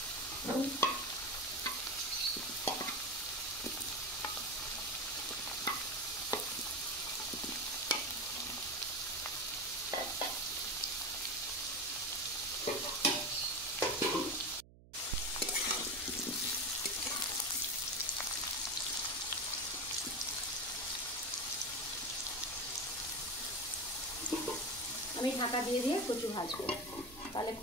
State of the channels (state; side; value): noise; right; hum, 21 dB below the sound